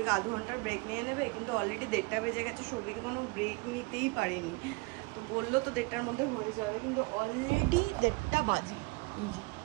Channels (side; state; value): left; quieter; 27.0 dB